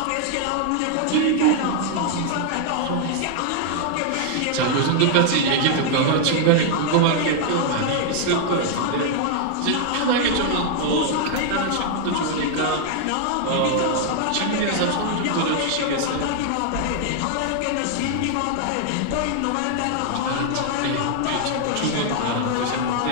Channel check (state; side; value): different; both; correlation 0.00